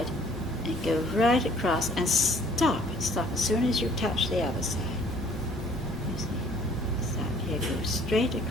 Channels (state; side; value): normal; both; correlation 0.57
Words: and go right across and stop as soon as you touch the other side? You see? Start here, go straight